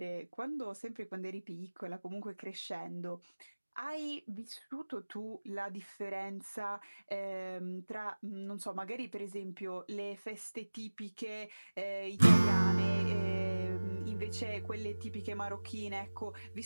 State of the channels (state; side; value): inverted; both; correlation -1.00